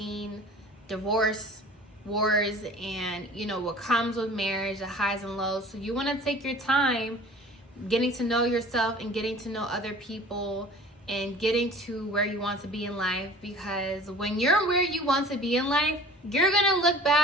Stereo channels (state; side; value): normal; both; correlation 0.45